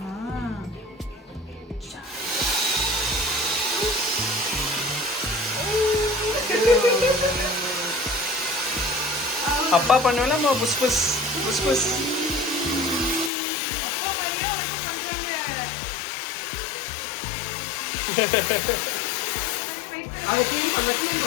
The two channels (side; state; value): right; drops out; at 13.3 s